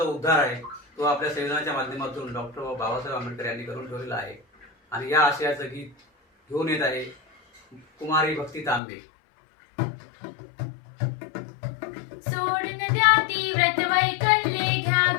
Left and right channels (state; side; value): drops out; right; at 8.8 s